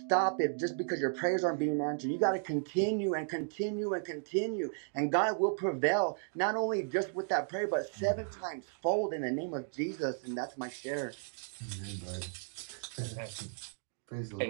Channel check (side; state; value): left; silent; digital silence